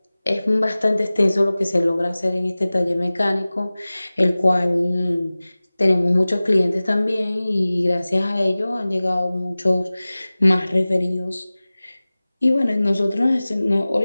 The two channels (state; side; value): inverted; both; correlation -0.98